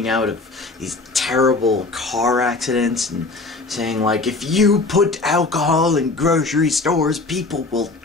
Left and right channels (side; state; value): right; quieter; 3.5 dB